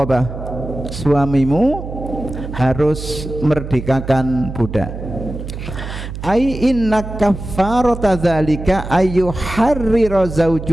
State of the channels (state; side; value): noise; right; hum, 9 dB below the sound